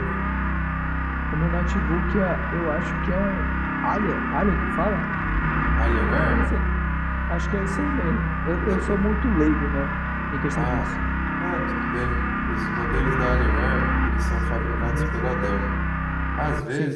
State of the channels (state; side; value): identical; both; correlation 1.00